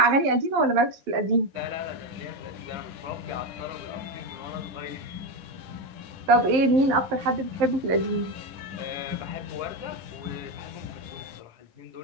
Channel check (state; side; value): late; left; 11 ms